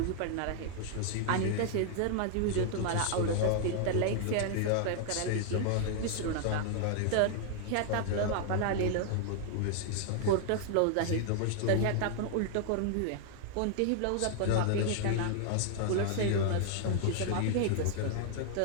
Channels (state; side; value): different; both; correlation 0.00